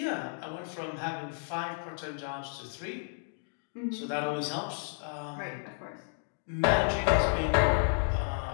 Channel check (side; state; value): right; silent; digital silence